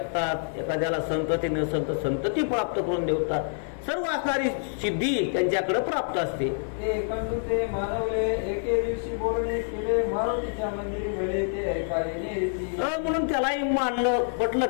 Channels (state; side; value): silent; right; 58 dB below the other